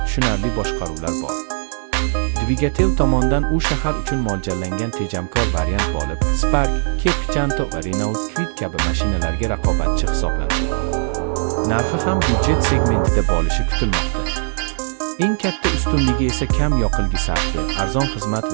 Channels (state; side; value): silent; left; digital silence